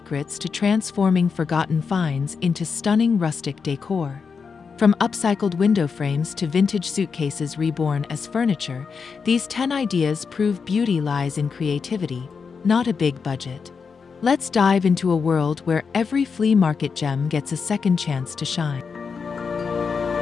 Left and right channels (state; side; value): quieter; right; 5.6 dB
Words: to transforming forgotten finds into stunning rustic decor. From upcycled window frames to vintage suitcases reborn as furniture, these 10 ideas prove beauty lies in creativity, not a big budget. Let's dive into a world where every flea market gem gets a second chance to shine.